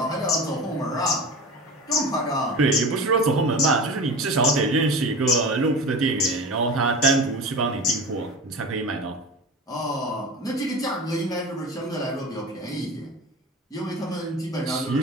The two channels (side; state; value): both; normal; correlation 0.30